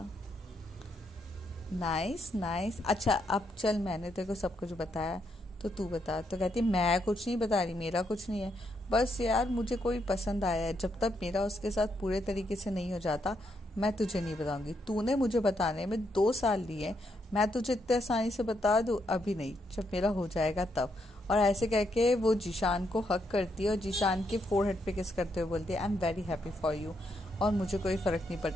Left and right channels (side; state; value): both; normal; correlation 0.78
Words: Nice nice. अच्छा अब चल, मैंने तेरे को सब कुछ बताया, तो तू बता। तो कहती, मैं कुछ नहीं बता रही, मेरा कुछ नहीं है। बस यार मुझे कोई पसंद आया है, जब तक मेरा उसके साथ पूरे तरीके से नहीं हो जाता मैं तुझे नहीं बताऊंगी। तूने मुझे बताने में 2 साल लिए, मैं तुझे इतने आसानी से बता दूँ? अभी नहीं, जब मेरा हो जाएगा तब। और ऐसे कह के वो जीशान को हक करती है और जीशान के फोरहेड पे किस करते हुए बोलती है, I am very happy for you, और मुझे कोई फ़र्क नहीं